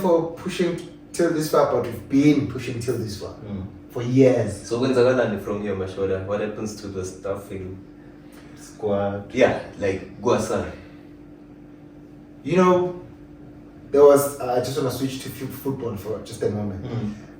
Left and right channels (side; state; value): both; identical; correlation 1.00